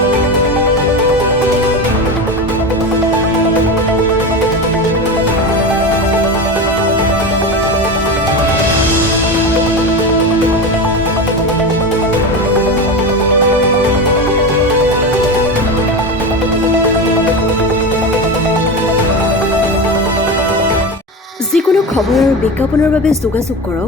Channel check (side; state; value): both; normal; correlation 0.22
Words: যিকোনো খবৰ আৰু বিজ্ঞাপনৰ বাবে যোগাযোগ